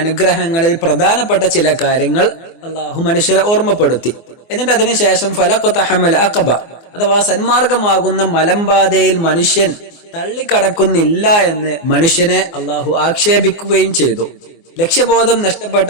പ്രധാനപ്പെട്ട ചില കാര്യങ്ങൾ അല്ലാഹു മനുഷ്യരെ ഓർമ്മപ്പെടുത്തി. എന്നിട്ട് അതിനുശേഷം ഫലഖതഹമൽ അഖബ അഥവാ സന്മാർഗമാകുന്ന മലമ്പാതയിൽ മനുഷ്യൻ തള്ളിക്കടക്കുന്നില്ല എന്ന് മനുഷ്യനെ അല്ലാഹു ആക്ഷേപിക്കുകയും ചെയ്തു. ലക്ഷ്യബോധം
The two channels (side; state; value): right; late; 24 ms